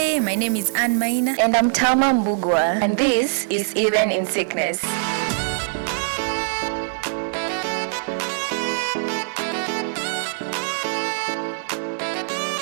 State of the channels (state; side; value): silent; left; 64 dB below the other